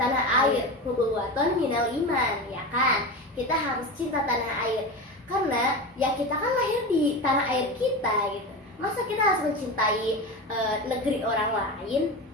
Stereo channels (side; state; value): both; normal; correlation 0.24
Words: air. Hubuwaton minal iman, ya kan? Kita harus cinta tanah air. Karena ya kita kan lahir di tanah air kita gitu. Masa kita harus mencintai negeri orang lain,